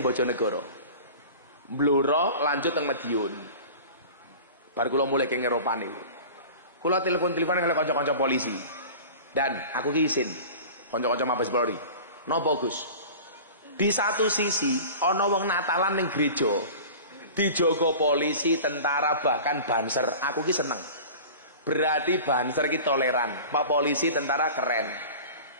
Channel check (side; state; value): both; inverted; correlation -0.38